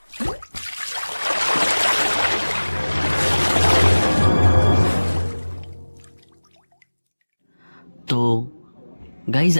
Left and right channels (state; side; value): inverted; both; correlation -1.00